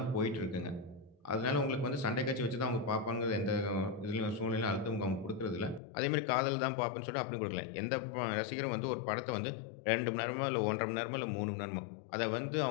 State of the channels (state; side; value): drops out; right; at 5.8 s